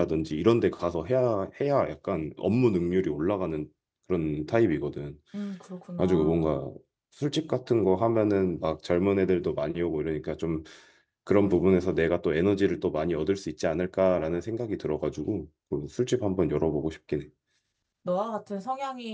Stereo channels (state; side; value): identical; both; correlation 1.00